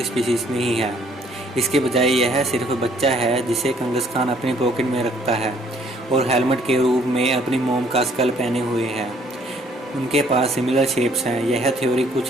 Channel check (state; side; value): normal; both; correlation 0.62